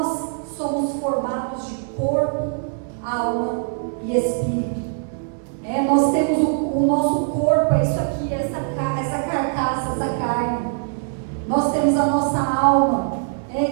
somos formados de corpo, alma e espírito. Nós temos o nosso corpo, é isso aqui, essa carcaça, essa carne. Nós temos a nossa alma,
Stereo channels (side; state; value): left; silent; 64 dB below the other